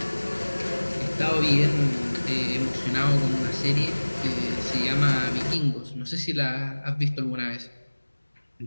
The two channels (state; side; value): inverted; both; correlation -1.00